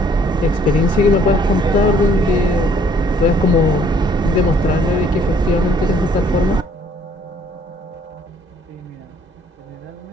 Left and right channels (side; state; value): both; normal; correlation 0.62